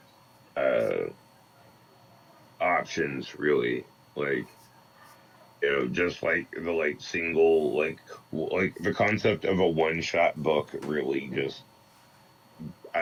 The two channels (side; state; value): both; identical; correlation 1.00